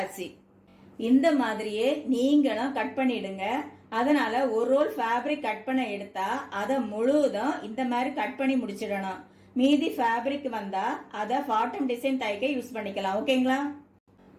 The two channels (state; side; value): identical; both; correlation 1.00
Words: இந்த மாதிரியே நீங்களும் கட் பண்ணிடுங்க. அதனால ஒரு ரோல் ஃபேப்ரிக் கட் பண்ண எடுத்தா அதை முழுவதும் இந்த மாதிரி கட் பண்ணி முடிச்சிடணும். மீதி ஃபேப்ரிக் வந்தா அதை பாட்டம் டிசைன் தைக்க யூஸ் பண்ணிக்கலாம். ஓகேங்களா?